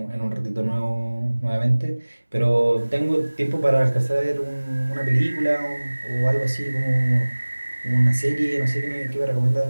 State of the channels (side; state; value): both; inverted; correlation -1.00